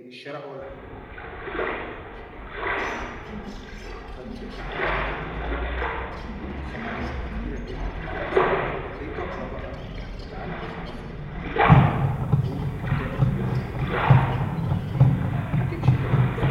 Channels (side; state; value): both; identical; correlation 1.00